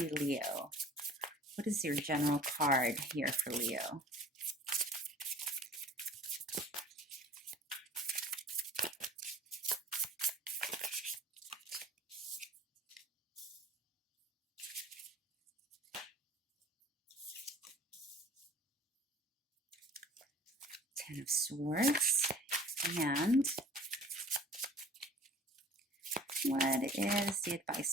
Leo. What is your general card here for Leo? Ten of Swords. And what is the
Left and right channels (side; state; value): both; normal; correlation 0.48